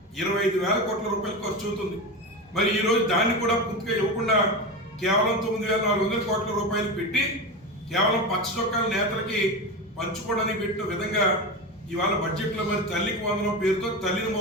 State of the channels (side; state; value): both; normal; correlation 0.21